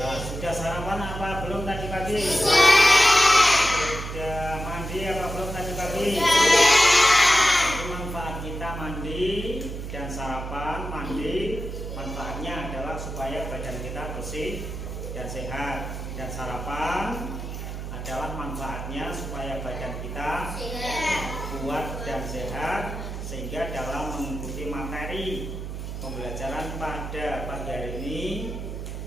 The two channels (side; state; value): right; noise; hum, 7 dB below the sound